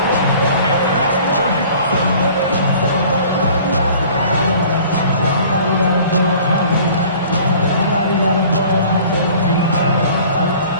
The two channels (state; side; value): inverted; both; correlation -0.49